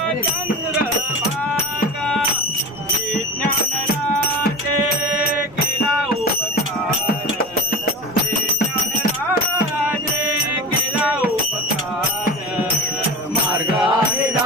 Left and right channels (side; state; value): both; normal; correlation 0.29